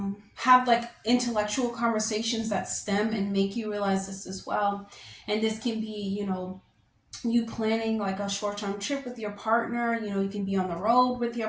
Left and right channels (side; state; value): both; identical; correlation 1.00